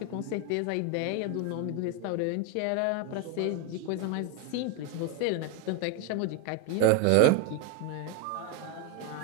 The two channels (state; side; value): different; both; correlation 0.01